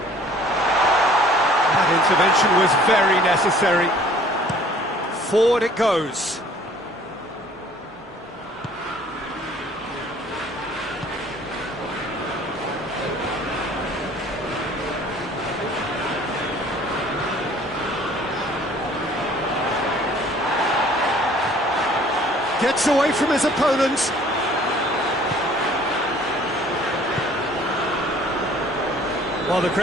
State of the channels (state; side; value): normal; both; correlation 0.54